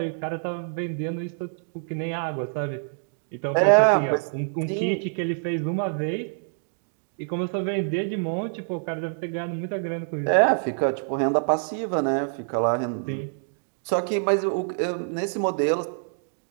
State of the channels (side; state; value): left; silent; digital silence